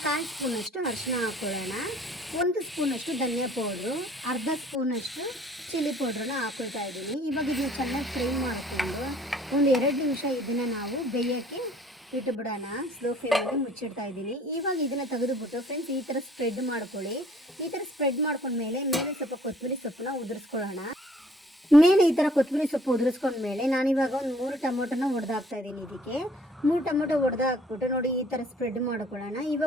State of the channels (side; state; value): both; normal; correlation 0.56